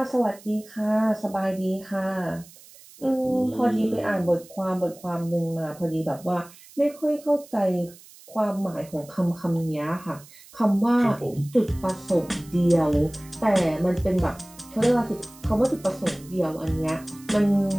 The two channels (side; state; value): right; noise; hiss, 22 dB below the sound